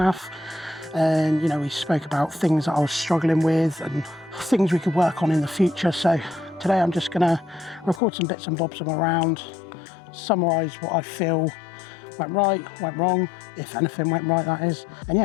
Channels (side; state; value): right; drops out; at 8.0 s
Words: And you know, we spoke about things that I was struggling with and things we could work on in the future. So today I'm just gonna record some bits and bobs from around, summarise what I feel went right, went wrong, if anything went right that is, and